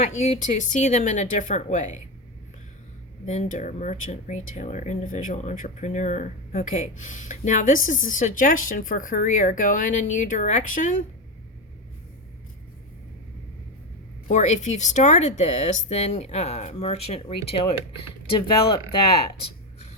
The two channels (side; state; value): both; normal; correlation 0.14